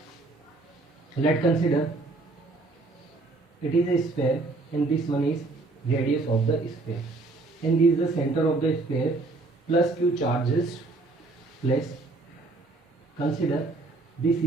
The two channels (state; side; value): quieter; left; 3.3 dB